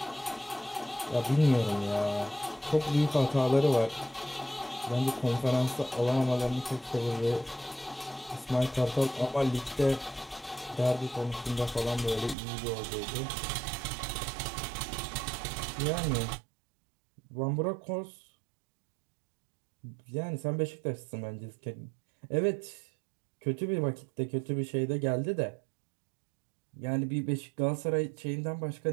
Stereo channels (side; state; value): left; drops out; at 12.4 s